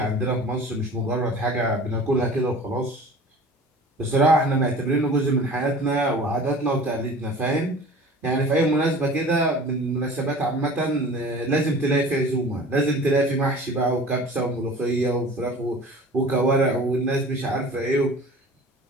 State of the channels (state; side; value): normal; both; correlation 0.42